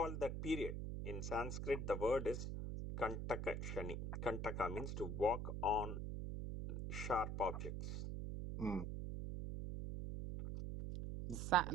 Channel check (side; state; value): right; noise; hum, 3 dB below the sound